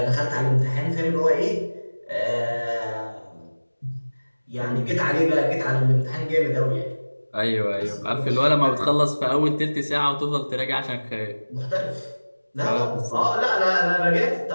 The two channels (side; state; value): both; inverted; correlation -1.00